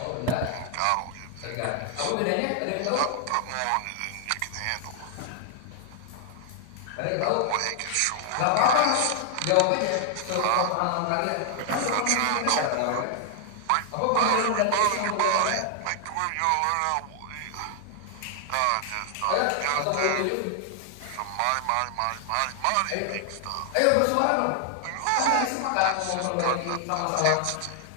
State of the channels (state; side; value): different; both; correlation 0.00